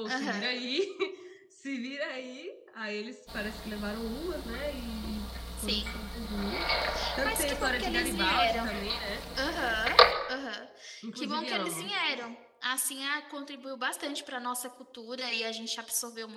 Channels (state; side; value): identical; both; correlation 1.00